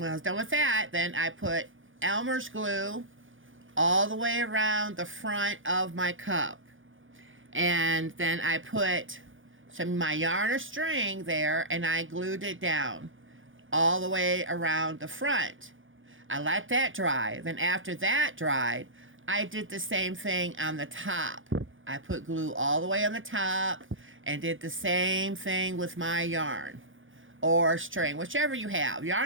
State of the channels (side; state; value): left; late; 0.58 ms